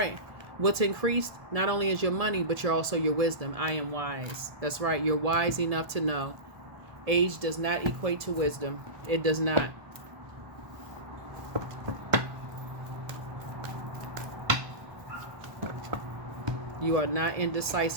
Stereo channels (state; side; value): late; left; 1.7 ms